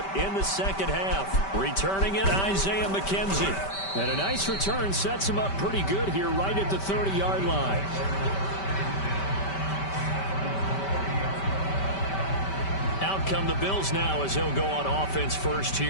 in the second half. Returning it, Isaiah McKenzie. And a nice return sets him up pretty good here right at the 30-yard line. Out come the Bills now as they'll go on offense first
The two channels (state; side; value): late; right; 5.2 ms